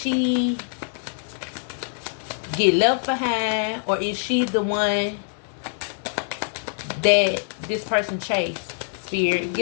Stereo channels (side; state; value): right; silent; digital silence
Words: get left behind, or is she the one that this person chased? Spirit,